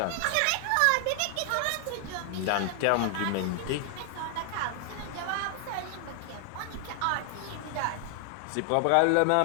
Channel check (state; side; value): different; both; correlation 0.00